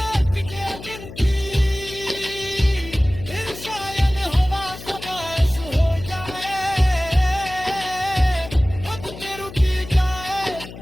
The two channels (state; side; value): noise; left; hum, 14 dB below the sound